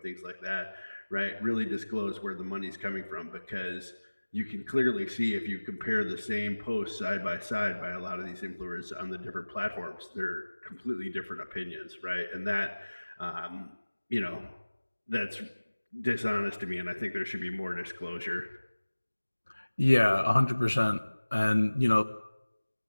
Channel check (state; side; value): inverted; both; correlation -1.00